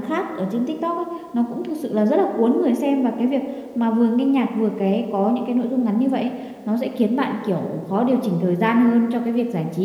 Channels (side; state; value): both; identical; correlation 1.00